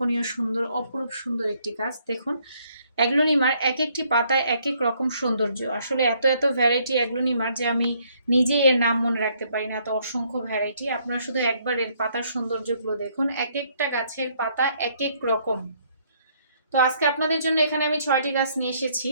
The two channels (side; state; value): both; inverted; correlation -0.68